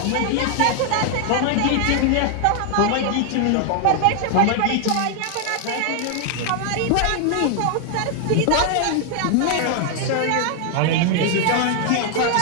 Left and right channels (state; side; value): different; both; correlation 0.00